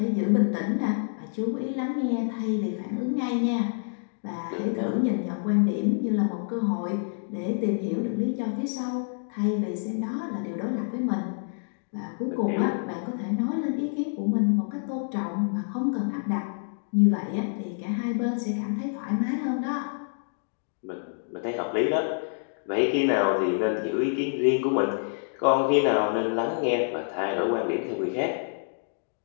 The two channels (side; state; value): right; silent; digital silence